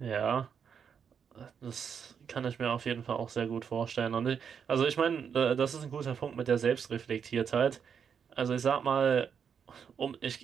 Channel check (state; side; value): quieter; left; 7.1 dB